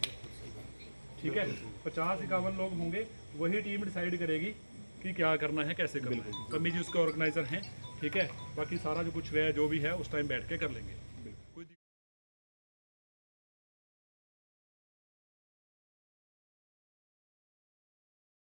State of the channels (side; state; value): both; inverted; correlation -1.00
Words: ठीक है। 50-51 लोग होंगे, वही टीम डिसाइड करेगी कि क्या करना है, कैसे करना है। पम्मी जी उसके ऑर्गेनाइजर हैं, ठीक है। बाकी सारा जो कुछ है, जो भी है, उस टाइम बैठ के कर लेंगे।